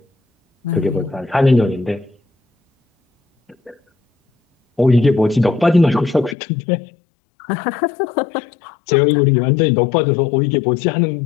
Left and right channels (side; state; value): right; drops out; at 6.4 s